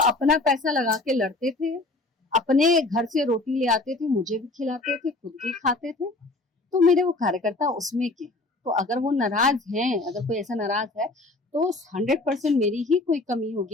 अपना पैसा लगा के लड़ते थे, अपने घर से रोटी ले आते थे, मुझे भी खिलाते थे, खुद भी खाते थे। तो मेरे वो कार्यकर्ता उसमें के, तो अगर वो नाराज हैं, अगर कोई ऐसा नाराज है तो 100% मेरी ही कोई कमी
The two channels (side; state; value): right; quieter; 3.0 dB